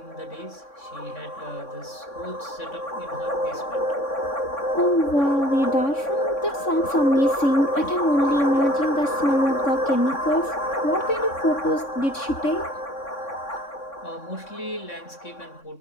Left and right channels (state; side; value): late; right; 3.6 ms